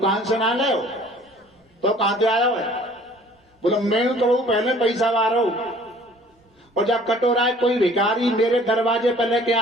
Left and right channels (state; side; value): normal; both; correlation 0.53